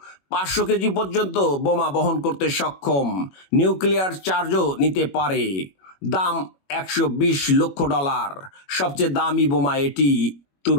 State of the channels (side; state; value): right; late; 21 ms